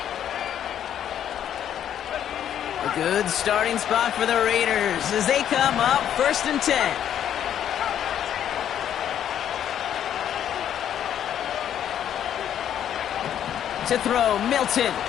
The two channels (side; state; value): right; quieter; 10.0 dB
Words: A good starting spot for the Raiders as they come up 1st and 10. To throw, Milton.